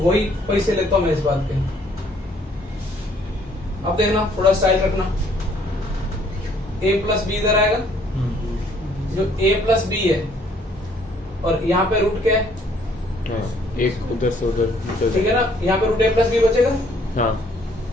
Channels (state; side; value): normal; both; correlation 0.63